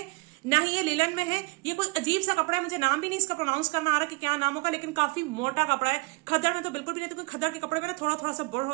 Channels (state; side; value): quieter; left; 27.3 dB